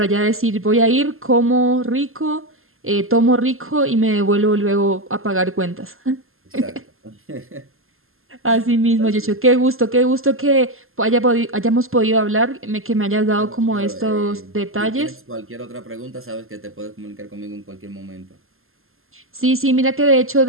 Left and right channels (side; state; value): left; late; 0.61 ms